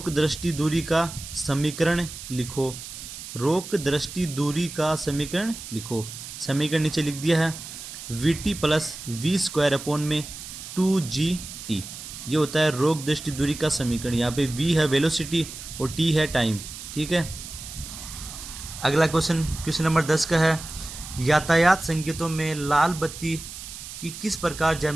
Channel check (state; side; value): noise; right; hiss, 11 dB below the sound